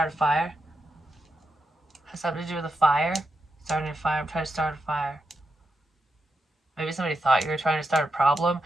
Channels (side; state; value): both; normal; correlation 0.86